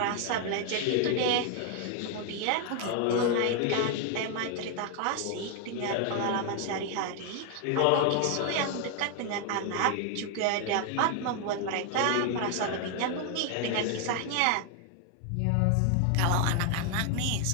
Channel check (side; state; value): both; different; correlation 0.00